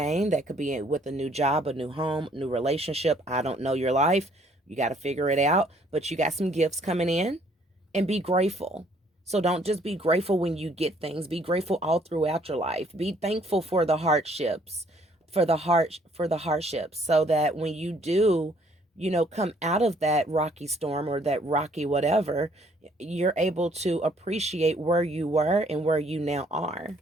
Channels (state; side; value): normal; both; correlation 0.63